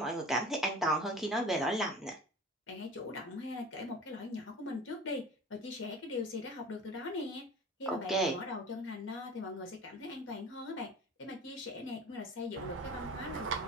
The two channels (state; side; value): normal; both; correlation 0.40